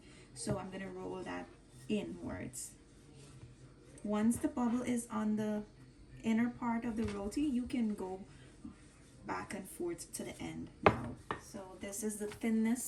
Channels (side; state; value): both; identical; correlation 1.00